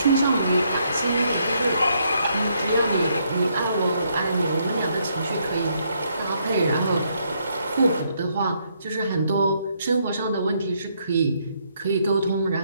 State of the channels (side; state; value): both; inverted; correlation -0.73